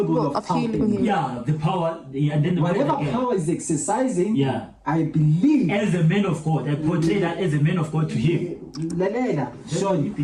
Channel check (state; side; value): identical; both; correlation 1.00